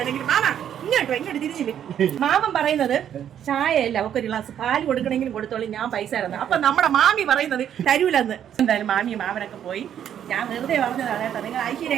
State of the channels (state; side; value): quieter; left; 9.7 dB